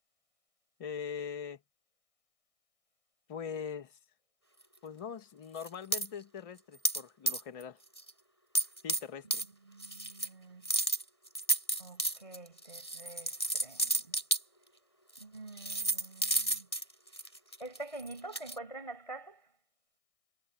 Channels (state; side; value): late; right; 1.6 ms